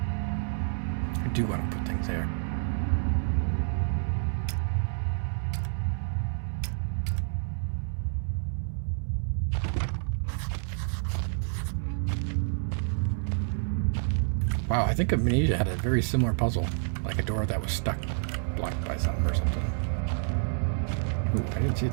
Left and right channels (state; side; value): silent; left; 59 dB below the other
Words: I do want to put things there. Wow, I think Amnesia had a very similar puzzle, like a door that was stuck, blocked by something or something. Ooh, I didn't see